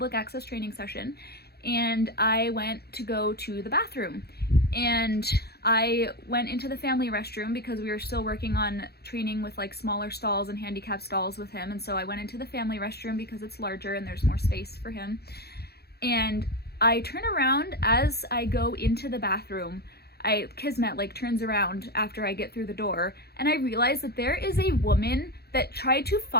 access training session, and I went to go to the bathroom. And I went into the family restroom because we were still working on training with like smaller stalls and handicap stalls with him, and so I went into the family restroom because it's larger and there's more space for him. And I turn around as I go into the bathroom. Kismet like turns around after I get through the door, and I realize that there is a woman that tried to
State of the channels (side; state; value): right; late; 0.46 ms